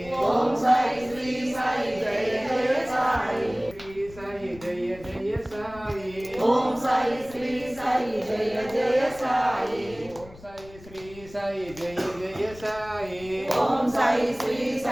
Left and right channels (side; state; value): left; noise; rumble, 19 dB below the sound